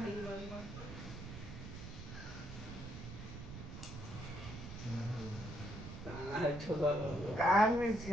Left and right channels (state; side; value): noise; right; rumble, 10 dB below the sound